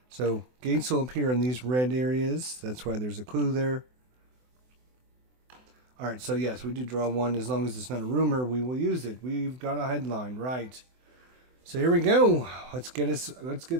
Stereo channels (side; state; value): left; late; 24 ms